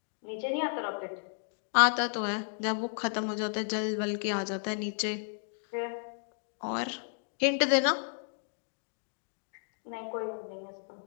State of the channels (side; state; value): right; silent; digital silence